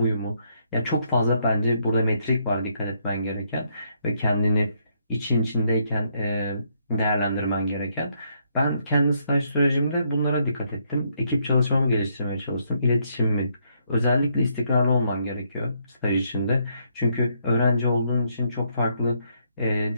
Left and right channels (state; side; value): inverted; both; correlation -0.73